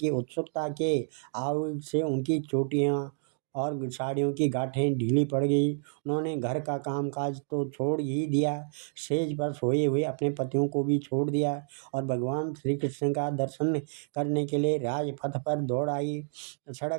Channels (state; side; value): silent; left; digital silence